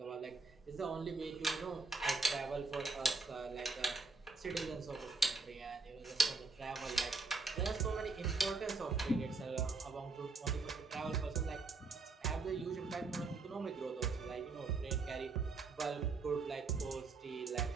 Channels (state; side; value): quieter; left; 3.9 dB